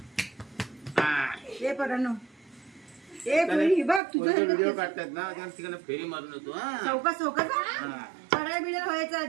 हे परानो ए पुरी बघ तुझं व्हिडिओ काढतात ना त्या ठिकाणी फेरी मारून येतो चौका चौका पडाय बिडाय व्हायचं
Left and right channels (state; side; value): drops out; left; at 4.0 s